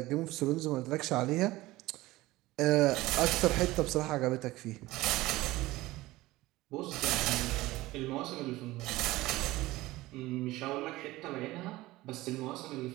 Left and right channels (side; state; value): left; quieter; 18.5 dB